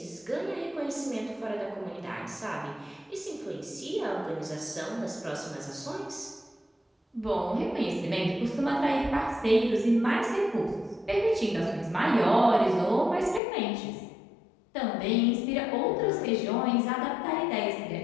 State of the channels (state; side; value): drops out; right; at 13.4 s